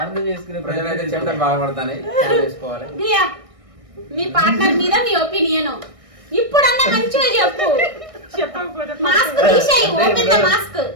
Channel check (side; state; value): left; late; 1.6 ms